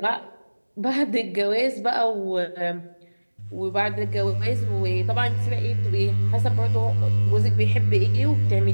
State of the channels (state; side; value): inverted; both; correlation -1.00